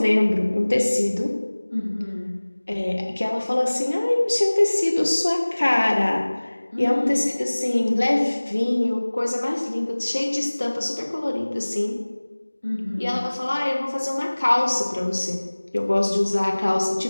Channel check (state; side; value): inverted; both; correlation -1.00